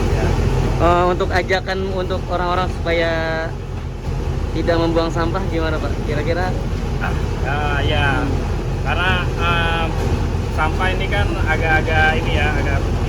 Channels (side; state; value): both; identical; correlation 1.00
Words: Untuk ajakan untuk orang-orang supaya tidak membuang sampah gimana Pak? Kira-kira? Ya, karena sampah ini kan agak-agak ini ya, agak